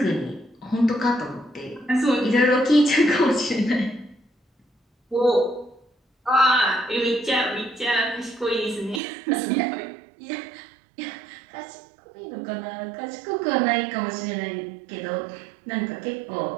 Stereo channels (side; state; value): left; drops out; at 9.0 s